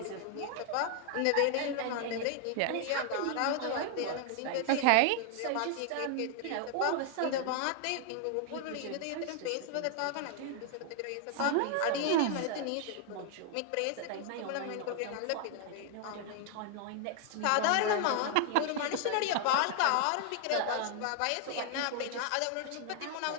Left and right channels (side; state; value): both; different; correlation 0.00